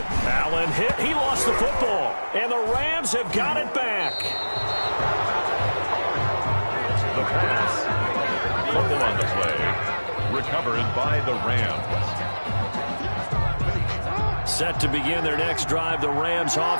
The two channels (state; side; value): inverted; both; correlation -1.00